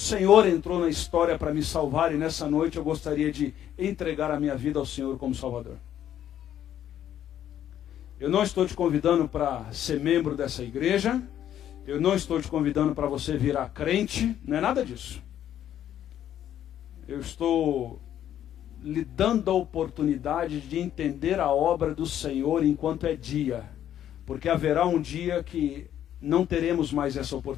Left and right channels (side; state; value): right; quieter; 10.8 dB